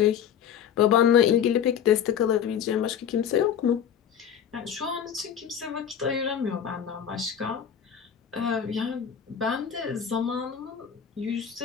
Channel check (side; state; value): right; quieter; 8.6 dB